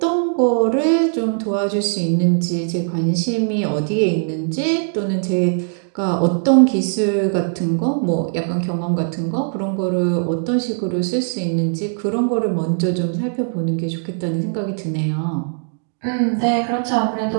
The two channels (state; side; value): silent; left; 66 dB below the other